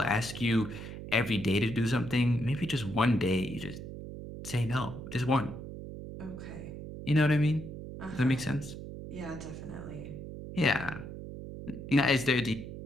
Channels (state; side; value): noise; right; hum, 10 dB below the sound